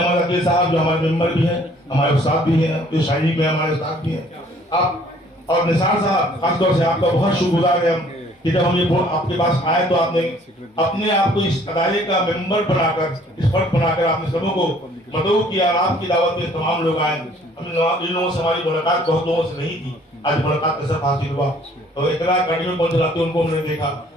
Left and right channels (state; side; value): normal; both; correlation 0.58